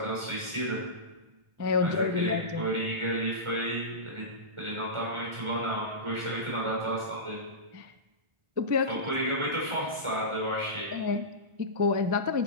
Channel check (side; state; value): left; late; 1.4 ms